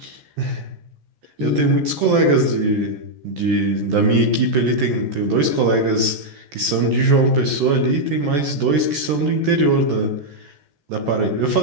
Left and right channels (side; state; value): left; late; 14 ms